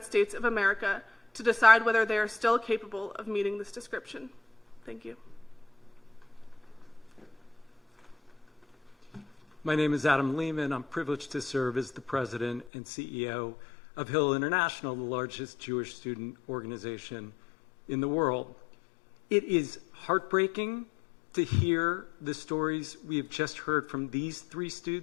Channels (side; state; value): right; drops out; at 12.7 s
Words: States of America to decide whether they are still capable of meeting this description. Thank you. My name is Adam Lehman. I'm privileged to serve as the president and CEO of Hillel International, the largest Jewish student organization in the world. It is heartbreaking to hear the stories we have just heard from these three